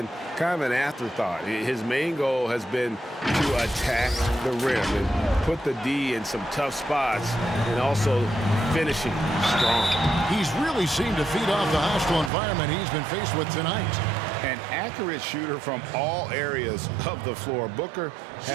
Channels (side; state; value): left; drops out; at 12.3 s